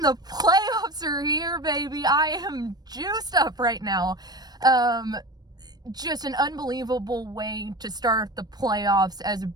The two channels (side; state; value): left; late; 0.19 ms